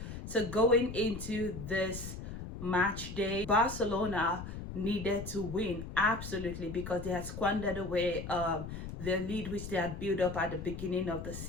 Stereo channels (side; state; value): left; noise; rumble, 8 dB below the sound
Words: So going into this match day, Barcelona needed to win absolutely because they had squandered away the lead which they had built up at the beginning of the